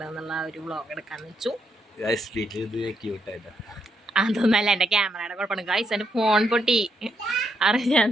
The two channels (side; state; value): both; normal; correlation 0.78